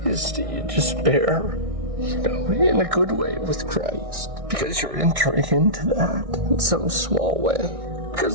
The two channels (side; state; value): left; late; 1.6 ms